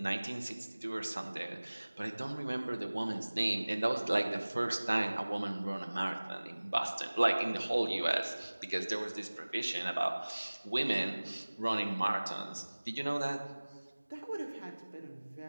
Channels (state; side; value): inverted; both; correlation -1.00